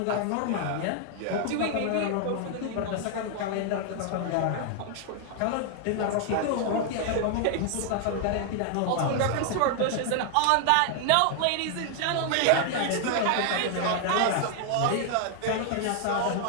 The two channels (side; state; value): both; different; correlation 0.00